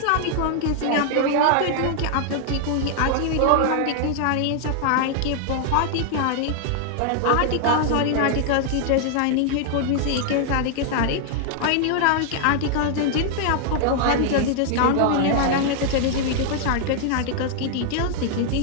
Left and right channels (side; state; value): both; different; correlation 0.00